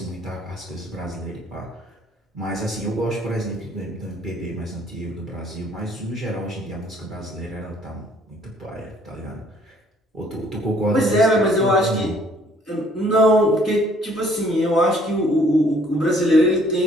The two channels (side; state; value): both; normal; correlation 0.61